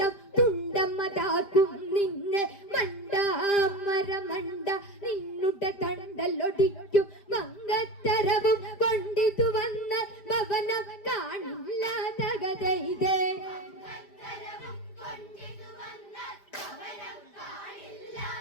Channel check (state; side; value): late; right; 5.0 ms